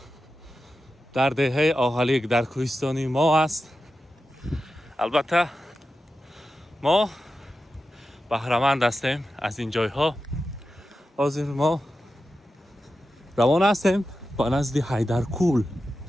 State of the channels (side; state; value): both; normal; correlation 0.91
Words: در دهه آهلیک در کوهستانی ما است. البته ما بهره‌مند هستیم از این جای ها. حاضر ما روانه هستیم با نزد حیدرکول.